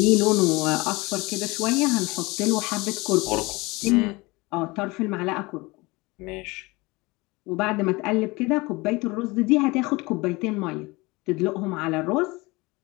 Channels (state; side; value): quieter; right; 23.4 dB